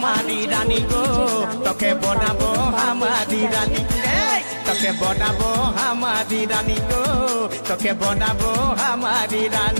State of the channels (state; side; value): inverted; both; correlation -1.00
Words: রানী গো তোকে বনাবো হামারি রানী তোকে বনাবো হামারি রানী গো তোকে বনাবো হামারি